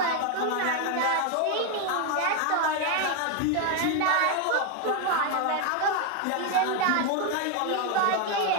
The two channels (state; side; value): different; both; correlation 0.01